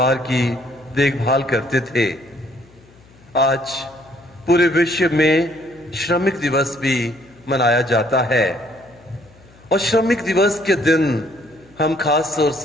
की देखभाल करते थे। आज पूरे विश्व में श्रमिक दिवस भी मनाया जाता है और श्रमिक दिवस के दिन हम खास तौर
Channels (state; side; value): noise; left; hum, 27 dB below the sound